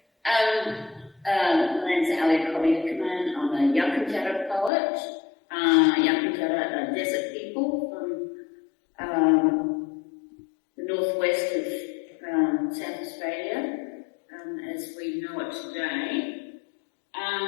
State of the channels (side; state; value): right; drops out; at 4.7 s